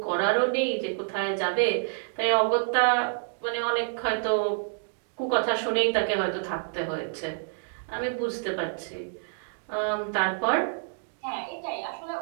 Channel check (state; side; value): silent; left; digital silence